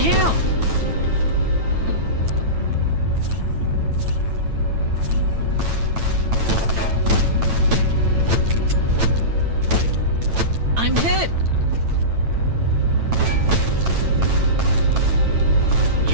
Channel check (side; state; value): left; late; 9.1 ms